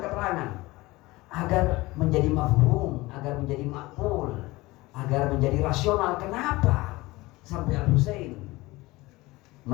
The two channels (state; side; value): quieter; right; 20.6 dB